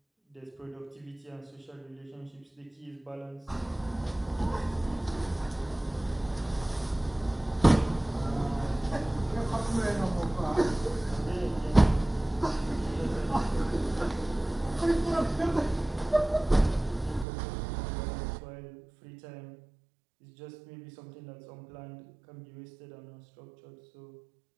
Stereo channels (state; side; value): drops out; left; at 17.2 s